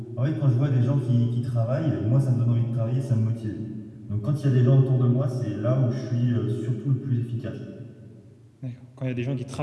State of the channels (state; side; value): identical; both; correlation 1.00